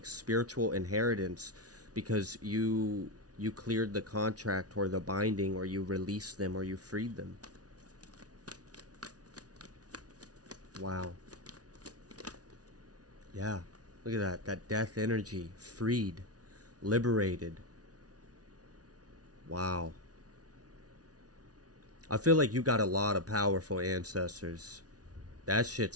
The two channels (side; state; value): left; late; 0.68 ms